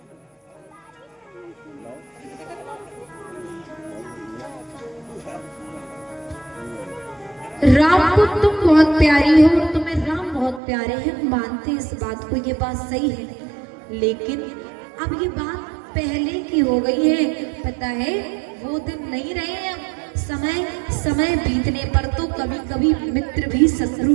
राम को तुम बहुत प्यारी हो और तुम्हें राम बहुत प्यारे हैं, मानते इस बात को, ये बात सही है। लेकिन अब ये बात पहले की हो गई है, पता है वो दिन नहीं रहे। अब समय बीतने पर तो कभी कभी मित्र भी शत्रु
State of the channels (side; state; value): left; drops out; at 10.6 s